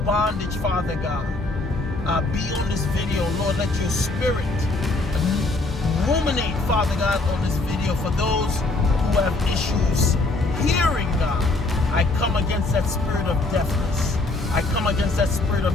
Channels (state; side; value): quieter; right; 3.1 dB